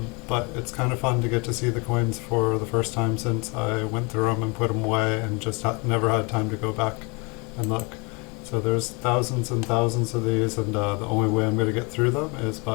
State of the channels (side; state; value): right; quieter; 30.0 dB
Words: it's kind of fun to get to see the coins for the first time since I went through them and put them away and just never had time to go back and look. So there's thousands and thousands of these, and the only way I'm going to get through them is